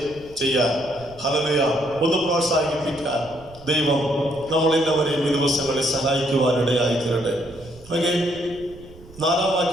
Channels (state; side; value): noise; right; rumble, 21 dB below the sound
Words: ചെയ്യാൻ, ഹല്ലേലൂയ, ഒന്ന് പ്രോത്സാഹിപ്പിക്കാൻ ദൈവം നമ്മളെല്ലാവരെയും ഈ ദിവസങ്ങളിൽ സഹായിക്കുവാനിടയായി തീരട്ടെ. ഓക്കെ, 4-ാം